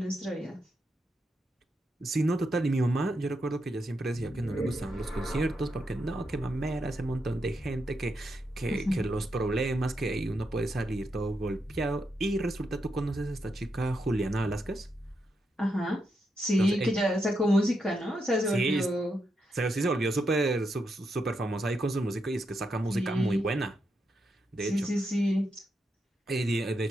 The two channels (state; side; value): normal; both; correlation 0.83